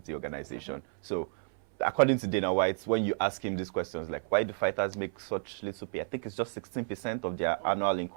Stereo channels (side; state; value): left; silent; 57 dB below the other